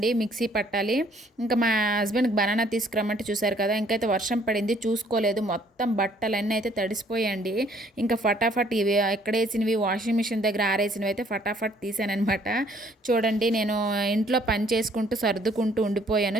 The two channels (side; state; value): both; normal; correlation 0.62